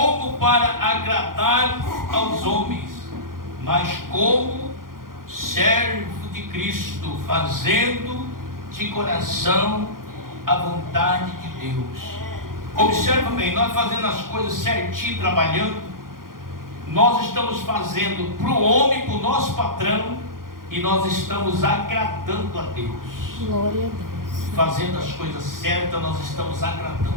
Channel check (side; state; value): left; late; 0.91 ms